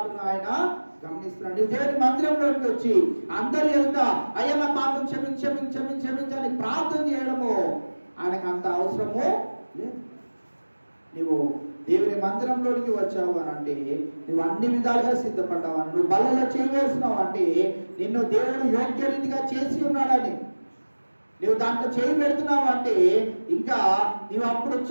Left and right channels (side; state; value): both; inverted; correlation -1.00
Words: ఆయన గమనిస్తున్నాడు. దేవుని మందిరంలోకి వచ్చి అందరి ఎదుట అయ్యా నా పాపం క్షమించని ప్రార్థన చేయడము ఆయనకు అంత అవసరము లేదు. నువ్వు దేవుని మందిరంలోనికి వచ్చావు అని అంటే నువ్వు అన్ని విధాలుగా సిద్ధపడ్డావు అని, నువ్వు బల్లలో చేయవేస్తున్నావు అంటే నిన్ను దేవుడు యోగ్య రీతిగా చేసి ఉన్నాడని, నువ్వు దాంట్లో చేయి పెడుతున్నావు అంటే ఇంకా నువ్వు అప్పుడు